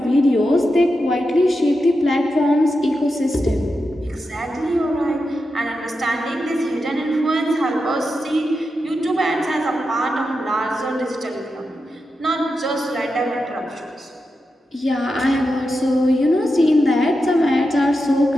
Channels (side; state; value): both; normal; correlation 0.88